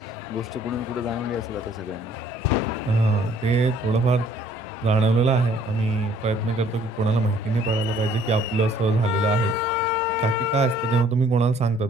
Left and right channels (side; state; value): both; normal; correlation 0.59